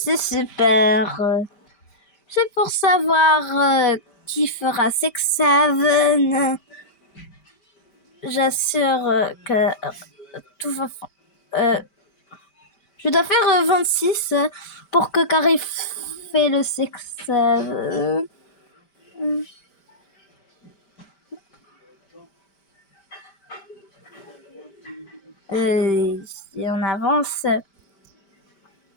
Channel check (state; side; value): late; right; 5.1 ms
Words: super. C'est pour savoir qui fera 6-7. J'assure que tout va. Je dois faire 26 pour que Carrie fait le 6-7. Si on avance,